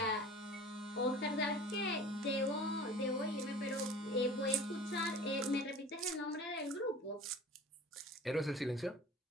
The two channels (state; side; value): normal; both; correlation 0.40